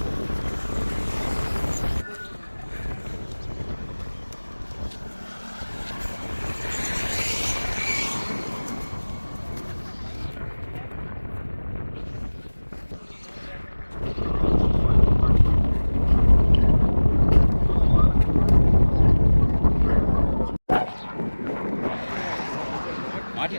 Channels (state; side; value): inverted; both; correlation -1.00